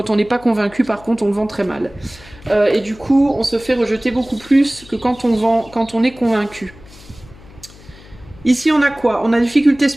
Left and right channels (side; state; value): left; noise; hum, 22 dB below the sound